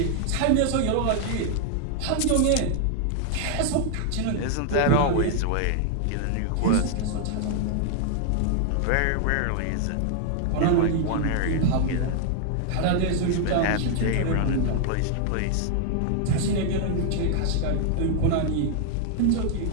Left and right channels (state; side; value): different; both; correlation 0.00